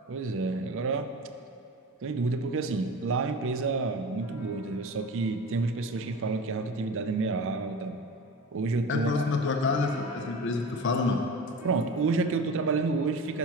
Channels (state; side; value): normal; both; correlation 0.33